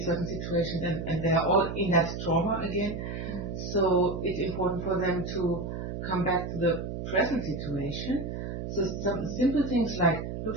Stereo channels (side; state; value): right; noise; hum, 5 dB below the sound